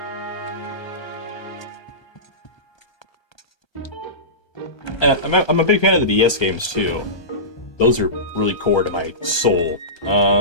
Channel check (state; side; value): late; right; 1.3 ms